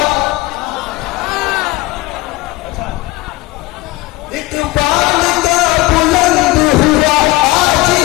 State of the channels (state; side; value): quieter; right; 20.1 dB